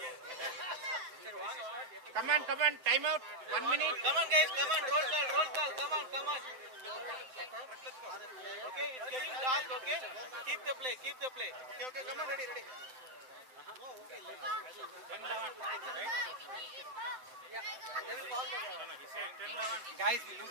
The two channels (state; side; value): late; left; 7.8 ms